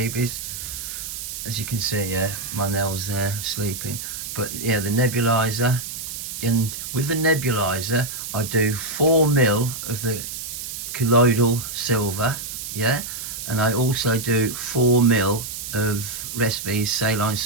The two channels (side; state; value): right; noise; hiss, 7 dB below the sound